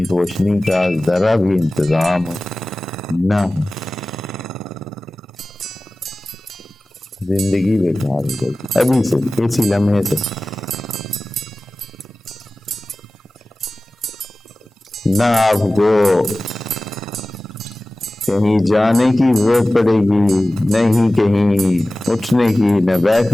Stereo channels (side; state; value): both; normal; correlation 0.97